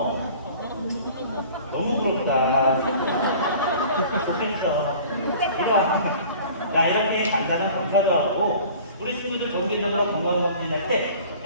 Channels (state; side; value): inverted; both; correlation -0.46